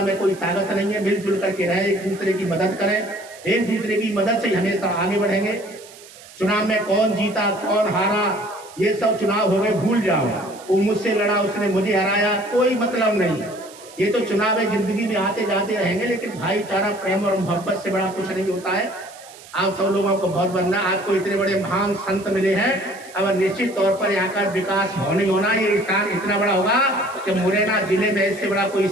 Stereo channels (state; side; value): noise; right; hiss, 20 dB below the sound